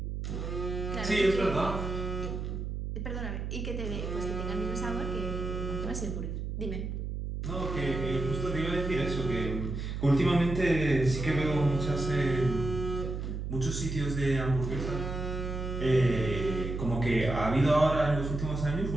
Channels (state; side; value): noise; right; hum, 4 dB below the sound